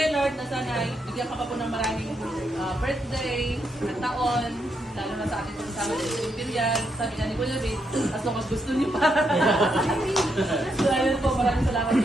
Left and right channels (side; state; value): both; normal; correlation 0.79